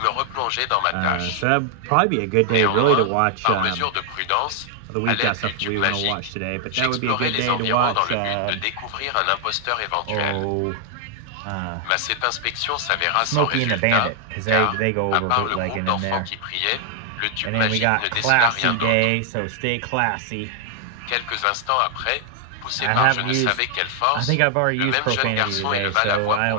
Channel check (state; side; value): different; both; correlation 0.00